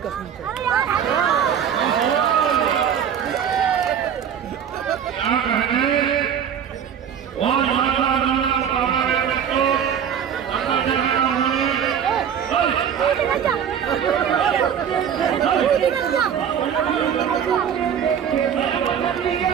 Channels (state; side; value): quieter; left; 8.3 dB